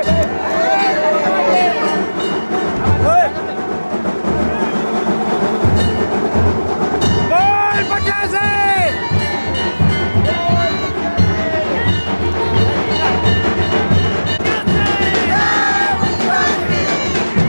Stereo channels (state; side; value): inverted; both; correlation -1.00